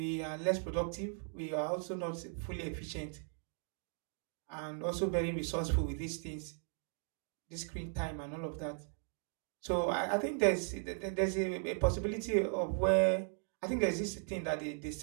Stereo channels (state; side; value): silent; left; 53 dB below the other